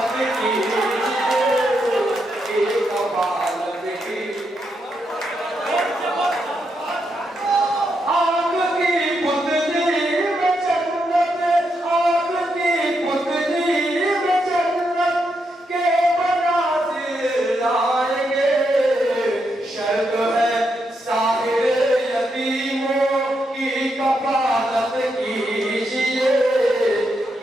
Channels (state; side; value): normal; both; correlation 0.81